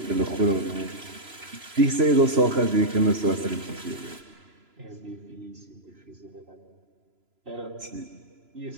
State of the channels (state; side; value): late; left; 3.0 ms